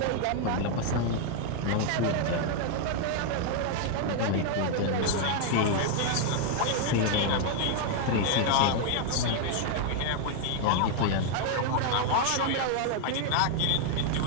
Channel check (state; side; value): different; both; correlation 0.00